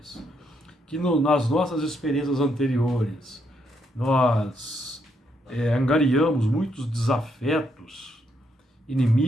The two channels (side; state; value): both; normal; correlation 0.76